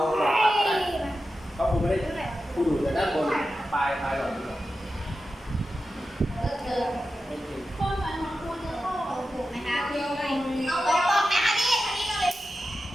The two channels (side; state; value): both; normal; correlation 0.92